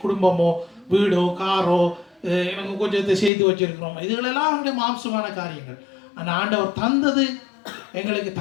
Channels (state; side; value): drops out; right; at 3.3 s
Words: குடும்பமோ வீடோ காரோ எனக்கு கொஞ்சத்தை செய்து வச்சிருக்கிறோம், இதுகளெல்லாம் அவங்களுடைய மாம்சமான காரியங்கள். ஆனால் ஆண்டவர் தந்தது எங்களுக்கு